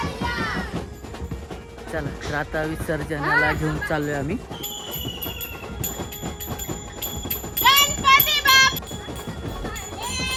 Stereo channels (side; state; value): both; identical; correlation 1.00